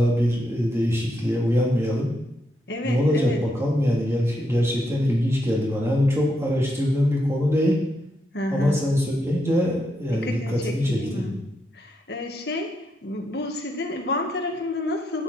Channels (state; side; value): normal; both; correlation 0.81